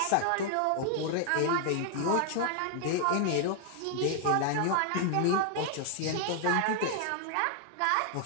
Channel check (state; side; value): different; both; correlation 0.00